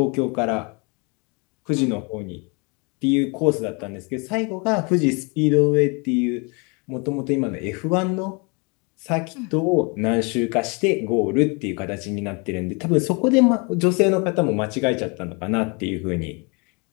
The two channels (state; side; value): quieter; right; 31.7 dB